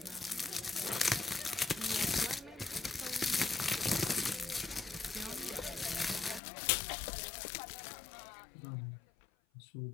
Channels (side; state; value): right; drops out; at 6.4 s